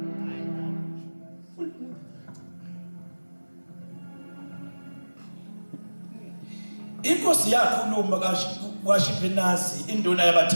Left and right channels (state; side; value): inverted; both; correlation -1.00